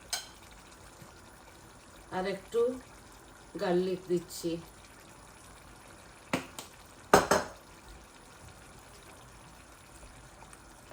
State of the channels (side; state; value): both; identical; correlation 1.00